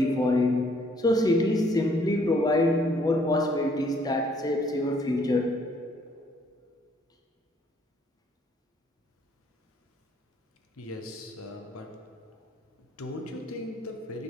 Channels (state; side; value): normal; both; correlation 0.65